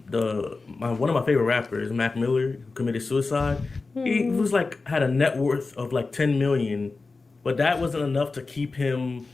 of my favorite rappers, Mac Miller, who committed suicide. He was like had a net worth of like 10 million, but that wasn't enough to keep him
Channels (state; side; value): quieter; right; 3.9 dB